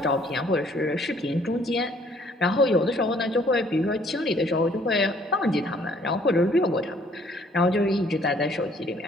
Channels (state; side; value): normal; both; correlation 0.61